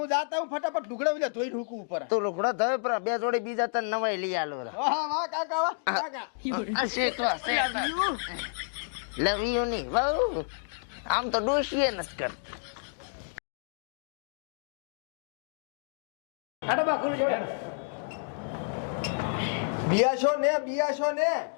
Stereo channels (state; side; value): silent; right; digital silence